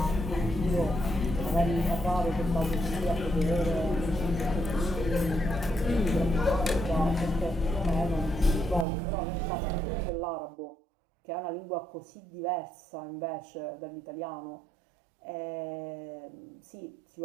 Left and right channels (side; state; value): left; drops out; at 8.8 s